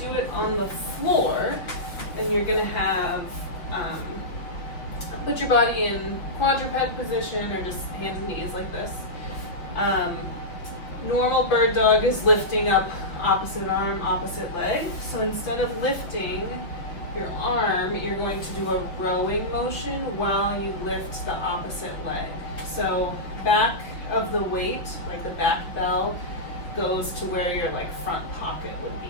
do it on the floor, then you're going to have put your body in quadruped position or just hands and knees like this. Normal bird dog is lifting up opposite arm, opposite leg. So instead of lifting your arm, you're going to do a rowing motion while you lift the opposite leg. So back of the weight, like the back bell, goes to where your like front pocket would be.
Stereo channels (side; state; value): right; late; 5.6 ms